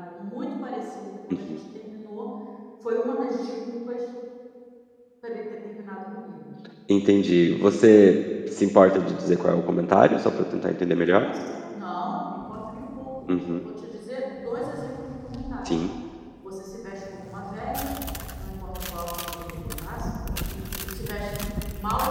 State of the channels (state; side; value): identical; both; correlation 1.00